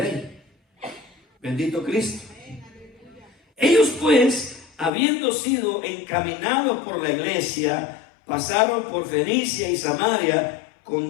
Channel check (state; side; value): drops out; right; at 4.9 s